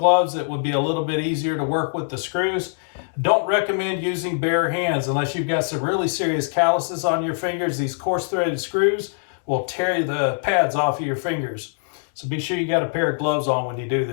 that would be a little bit easier to work with the screws. Don't recommend using bare hands unless you've got some really serious calluses on your fingers. These coarse threaded screws will tear the pads off of your fingers. So be sure you got a pair of gloves on when you do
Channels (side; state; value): right; silent; 64 dB below the other